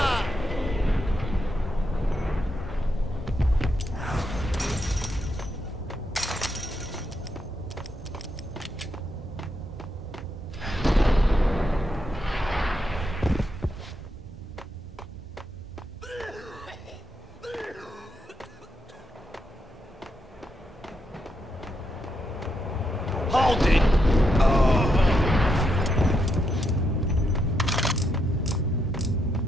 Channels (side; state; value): both; normal; correlation 0.81